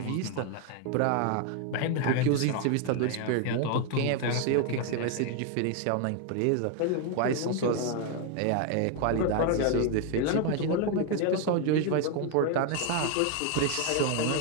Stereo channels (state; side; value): different; both; correlation 0.01